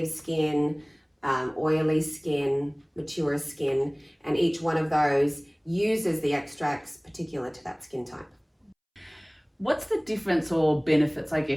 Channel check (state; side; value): identical; both; correlation 1.00